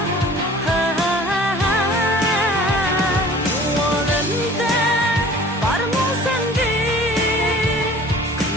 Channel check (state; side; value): normal; both; correlation 0.47